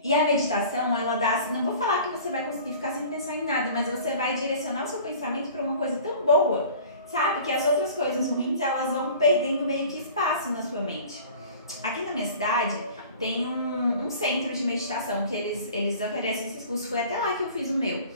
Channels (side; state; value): both; inverted; correlation -0.44